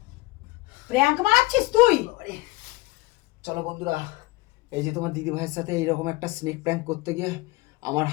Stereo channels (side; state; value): right; quieter; 21.2 dB